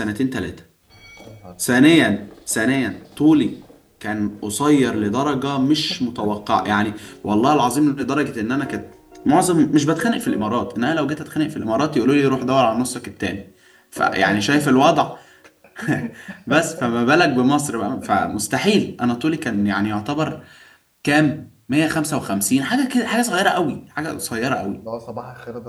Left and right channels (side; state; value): both; identical; correlation 1.00